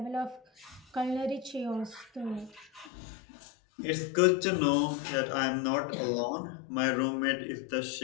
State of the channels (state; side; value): drops out; right; at 2.9 s